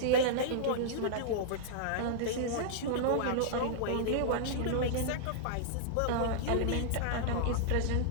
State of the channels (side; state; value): both; different; correlation -0.02